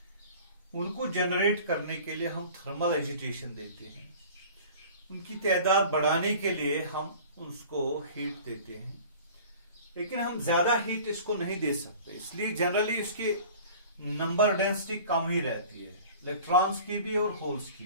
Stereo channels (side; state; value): both; inverted; correlation -0.43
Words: उनको जनरेट करने के लिए हम थर्मल एजिटेशन देते हैं। उनकी तादाद बढ़ाने के लिए हम उसको हीट देते हैं, लेकिन हम ज्यादा हीट इसको नहीं दे सकते, इसलिए जनरली इसकी नंबर डेंसिटी कम ही रहती है, इलेक्ट्रॉन्स की भी और होल्स की